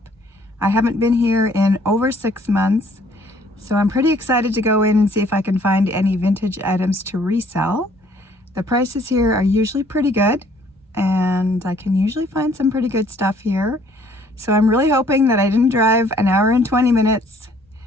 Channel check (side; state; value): both; normal; correlation 0.60